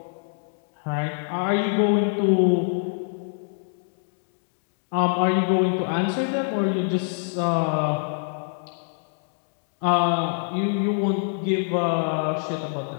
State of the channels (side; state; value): right; silent; digital silence